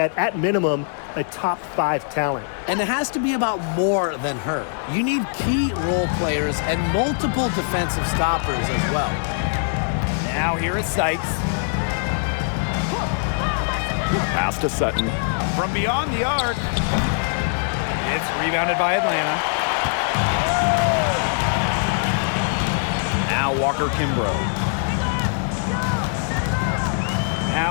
at minimum, a top 5 talent. And it has to be about more than her. You need key role players and multiple defensive stoppers as well. Now here is Sykes. Pass to Sutton. From beyond the arc. It's rebounded by Atlanta. Now Walker Kimbrough.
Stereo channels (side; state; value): right; silent; digital silence